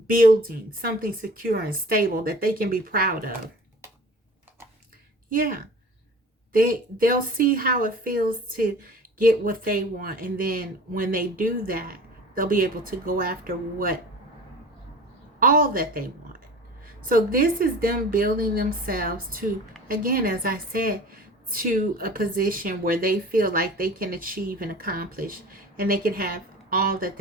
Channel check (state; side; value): normal; both; correlation 0.41